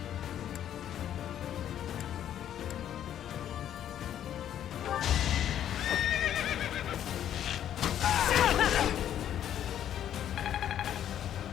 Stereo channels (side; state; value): right; quieter; 10.5 dB